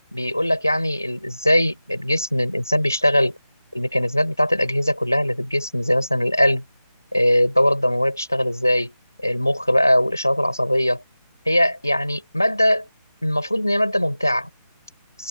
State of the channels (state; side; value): inverted; both; correlation -0.97